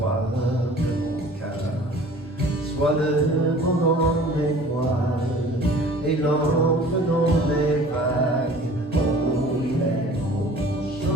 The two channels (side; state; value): both; normal; correlation 0.47